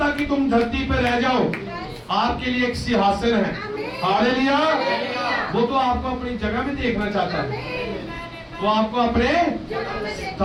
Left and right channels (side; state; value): both; identical; correlation 1.00